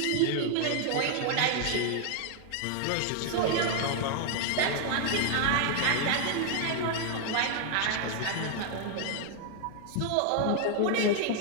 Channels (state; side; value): different; both; correlation 0.00